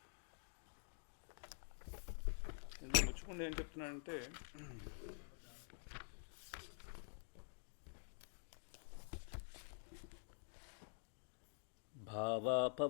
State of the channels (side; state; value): right; silent; digital silence